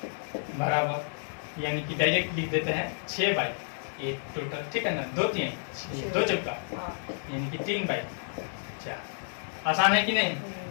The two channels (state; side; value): silent; right; digital silence